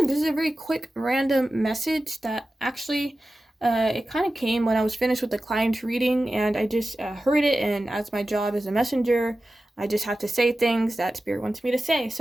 this is a very quick random message that actually it kind of came when I was finished with the client reading and I just heard it, and as my job as a messenger, I just have to say things that spirit wants me to say.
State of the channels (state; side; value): normal; both; correlation 0.94